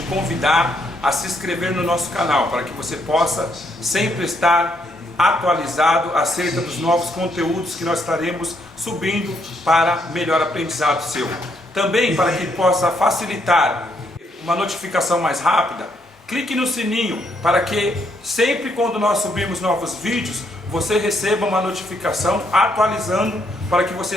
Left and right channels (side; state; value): both; normal; correlation 0.74